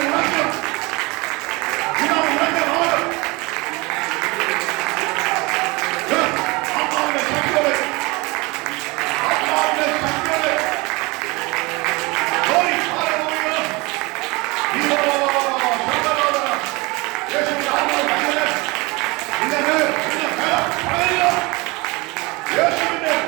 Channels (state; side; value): quieter; left; 24.8 dB